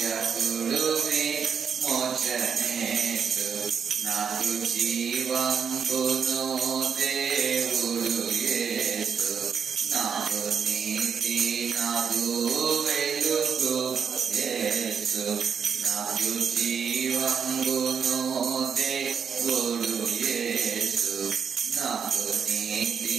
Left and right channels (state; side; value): quieter; left; 6.9 dB